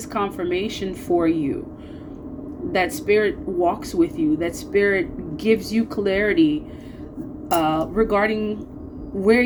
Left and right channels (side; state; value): both; identical; correlation 1.00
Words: confirmation for you that Spirit walks with you, that Spirit gives you clarity regarding where